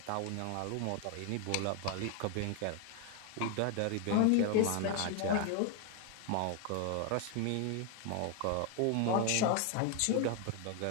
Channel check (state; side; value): different; both; correlation 0.01